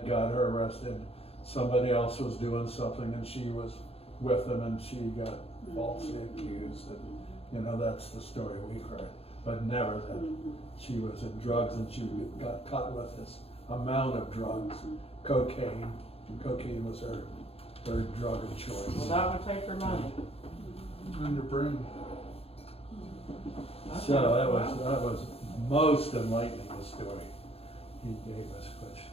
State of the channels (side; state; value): right; late; 0.29 ms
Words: got her arrested. Somebody else was doing something and she was with them and she got falsely accused, and that's the story we've heard, but never that she was in drugs and she got caught with this amount of drugs, cocaine. Cocaine was her drug of choice. Well, that would take her money. And your brain. So that was most enlightening story he gave us, which